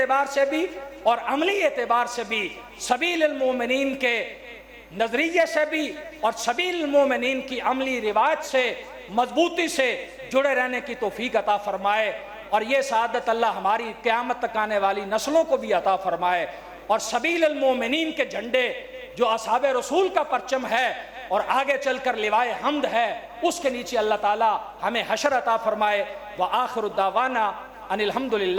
سے بھی اور عملی اعتبار سے بھی سبیل المومنین کے نظریے سے بھی اور سبیل المومنین کی عملی روایت سے مضبوطی سے جڑے رہنے کی توفیق عطا فرمائے، اور یہ سعادت اللہ ہماری قیامت تک آنے والی نسلوں کو بھی عطا فرمائے۔ اور سبیل المومنین کے جھنڈے جو اصحاب رسول کا پرچم ہے اور آگے چل کر لوائے حمد ہے، اس کے نیچے اللہ تعالی ہمیں حشر عطا فرمائے۔ وآخر الدعوانا ان الحمد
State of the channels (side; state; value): both; identical; correlation 1.00